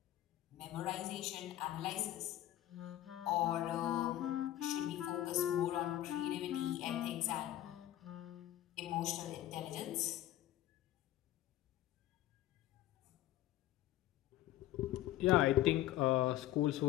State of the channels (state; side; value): quieter; right; 13.9 dB